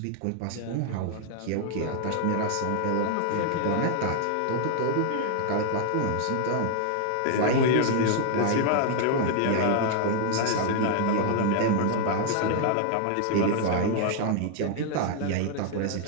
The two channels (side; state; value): both; different; correlation 0.00